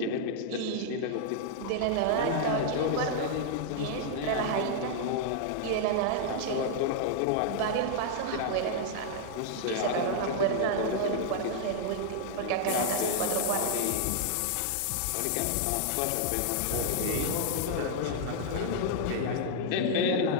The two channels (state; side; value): different; both; correlation -0.01